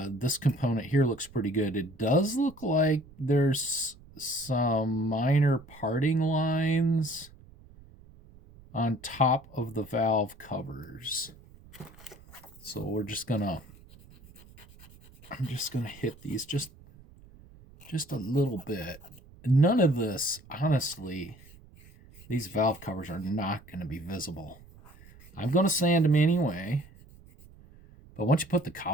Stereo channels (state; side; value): noise; right; rumble, 23 dB below the sound